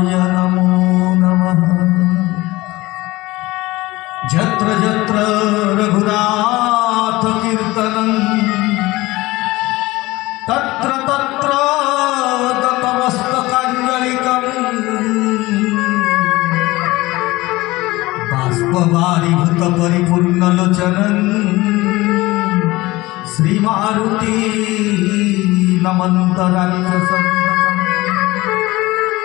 नमो नमः। जत्र जत्र रघुनाथ कीर्तनं तत्र तत्र गतमस्तकाञ्जलिकम् बाष्पवारिभूत परिपूर्णलोचनं श्रीमारुति नमन्त राक्षसं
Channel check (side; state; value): right; quieter; 19.8 dB